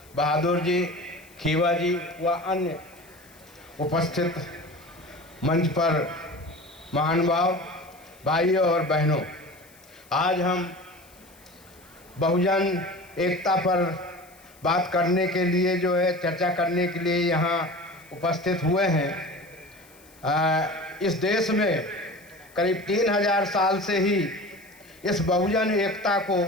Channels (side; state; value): left; noise; hiss, 26 dB below the sound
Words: बहादुर जी, खीवा जी व अन्य उपस्थित मंच पर महानुभाव भाइयों और बहनों, आज हम बहुजन एकता पर बात करने के लिए चर्चा करने के लिए यहाँ उपस्थित हुए हैं। इस देश में करीब 3000 साल से ही इस बहुजन एकता को